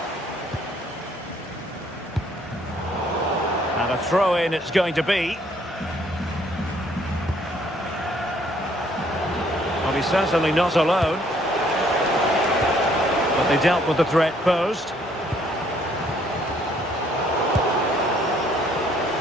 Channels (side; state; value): both; normal; correlation 0.64